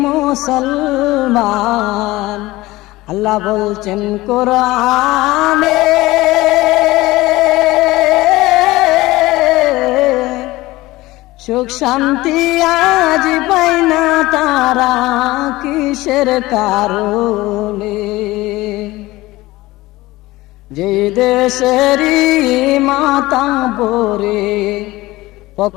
মুসলমান আল্লাহ বলছেন কোরআনে সুখ শান্তি আজ পাই না তারা কিসের কারণে যে দেশেরই মাতা বরে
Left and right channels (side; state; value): right; quieter; 19.0 dB